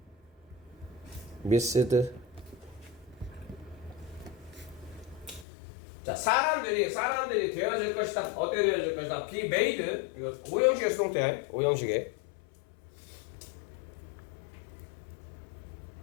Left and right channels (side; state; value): right; drops out; at 5.5 s